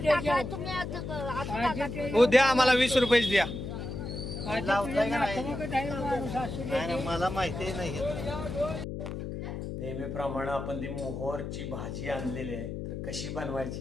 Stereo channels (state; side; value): noise; left; hum, 6 dB below the sound